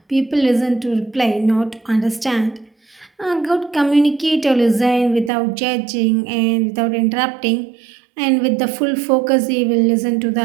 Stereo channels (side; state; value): left; drops out; at 5.3 s